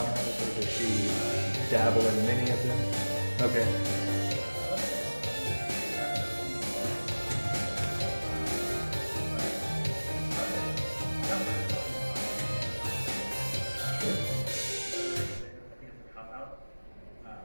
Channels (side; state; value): both; inverted; correlation -1.00